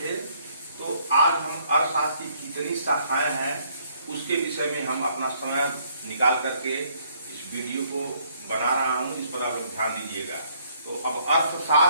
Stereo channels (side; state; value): both; inverted; correlation -0.65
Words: थे। तो आज हम अर्थशास्त्र की कितनी शाखाएं हैं उसके विषय में हम अपना समय निकाल करके इस वीडियो को बना रहा हूं, इस पर आप ध्यान दीजिएगा। तो अब